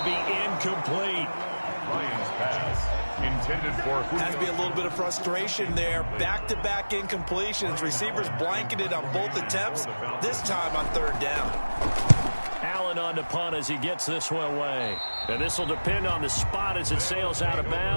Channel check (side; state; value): both; inverted; correlation -1.00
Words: be incomplete. Ryan's pass. Intended for Julio. Has to be a little bit of frustration there. Back-to-back incompletions. Receivers blanketed on both attempts, this time on 3rd down. Allen on to punt as he gets this one away. And this will depend on the spot as it sails out of